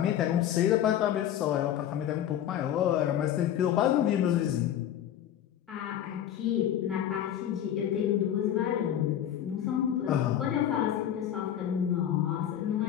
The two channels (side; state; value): right; quieter; 10.7 dB